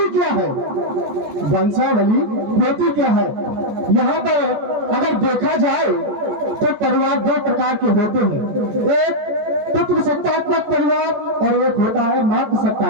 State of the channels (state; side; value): late; left; 14 ms